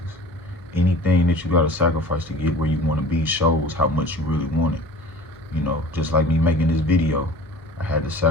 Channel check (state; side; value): normal; both; correlation 0.43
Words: Anything that you gotta sacrifice to get where you wanna be shows how much you really want it. You know, just like me making this video, I had to